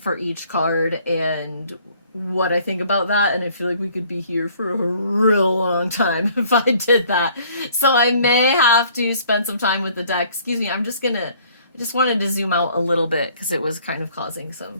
each card and what I think about that, and I feel like we could be here for a real long time if I did that. So I may have to spend some time with the deck. Excuse me, I just wanted to zoom out a little bit because it was kind of causing some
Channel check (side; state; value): both; inverted; correlation -0.58